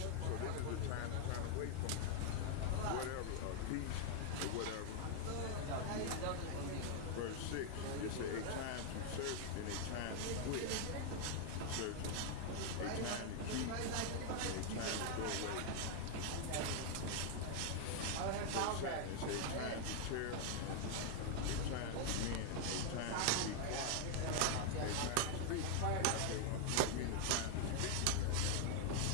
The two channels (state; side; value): different; both; correlation 0.00